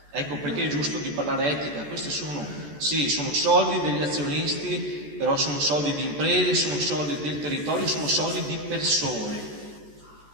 Ecco perché è giusto di parlare etica. Questi sono soldi degli azionisti, però sono soldi di imprese, sono soldi del territorio, sono soldi di persone.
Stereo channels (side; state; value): left; late; 14 ms